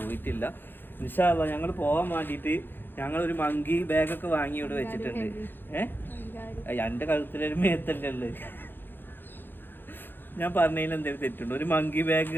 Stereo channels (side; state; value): right; late; 0.098 ms